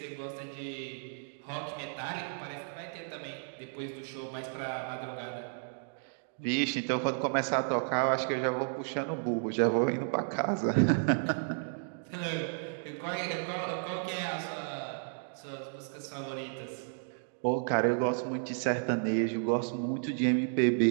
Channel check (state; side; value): silent; left; digital silence